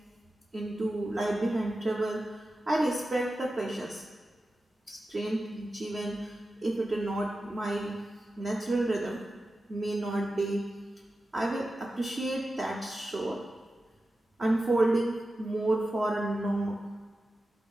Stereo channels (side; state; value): both; normal; correlation 0.93